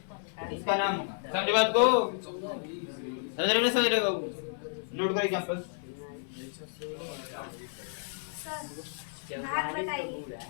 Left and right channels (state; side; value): silent; right; 57 dB below the other